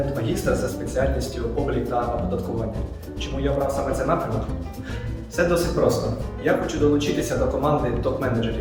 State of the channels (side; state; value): both; identical; correlation 1.00